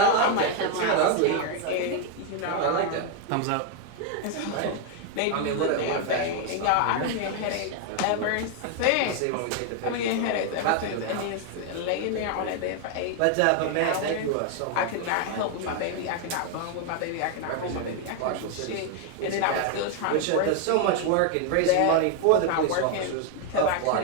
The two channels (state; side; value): different; both; correlation 0.01